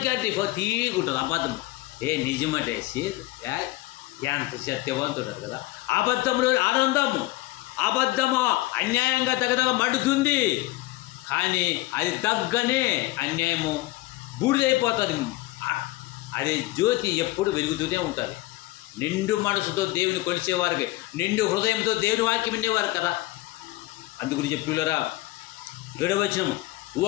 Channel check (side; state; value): right; quieter; 19.4 dB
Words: అంటే తీగుంటుంది అబద్ధం. నిజమంటే ఎంత సత్యవంతుడు కదా. అబద్ధంలో ఆనందము, అబద్ధము అన్యాయంగా తగదగా మండుతుంది, కానీ అది తగ్గనే అన్యాయము బూడిదైపోతుంది. అది జ్యోతి ఎప్పుడు వెలుగుతూనే ఉంటుంది. నిండు మనసుతో దేవుని కొలిచేవారికి, నిండు హృదయంతో దేవుని వాక్యం వినేవారు కదా. అందుగురించి పిల్లరా 7వ వచనము,